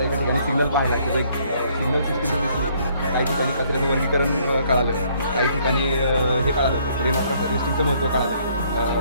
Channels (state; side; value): inverted; both; correlation -0.65